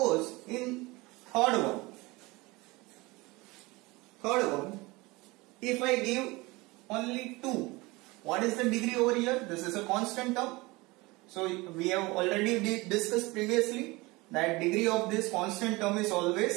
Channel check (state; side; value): quieter; left; 22.9 dB